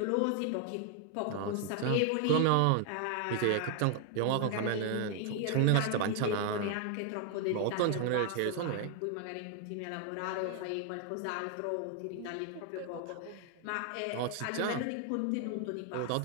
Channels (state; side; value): different; both; correlation 0.00